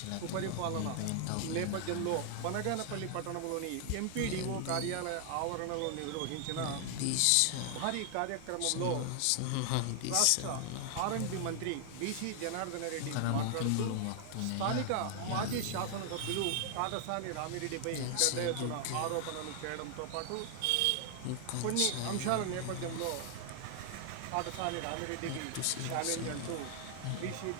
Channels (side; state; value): both; different; correlation 0.00